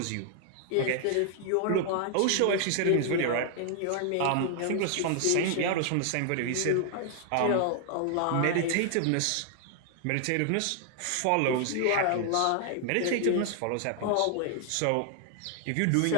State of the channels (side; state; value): both; different; correlation 0.00